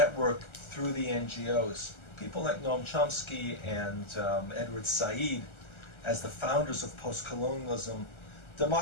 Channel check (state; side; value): late; right; 1.3 ms